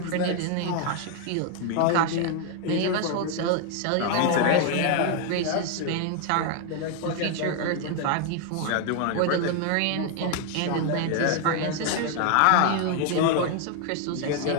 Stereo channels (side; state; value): both; different; correlation 0.00